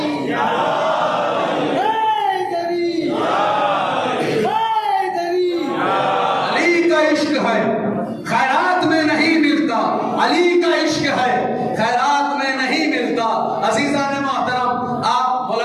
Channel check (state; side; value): identical; both; correlation 1.00